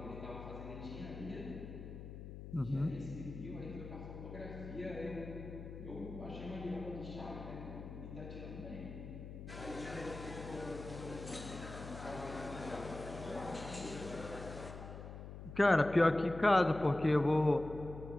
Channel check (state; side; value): noise; left; hum, 10 dB below the sound